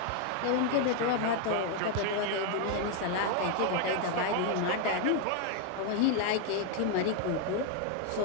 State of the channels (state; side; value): different; both; correlation 0.00